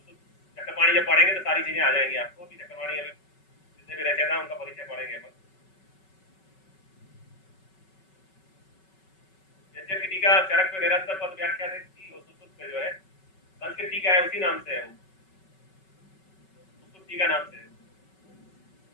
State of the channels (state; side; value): late; right; 5.3 ms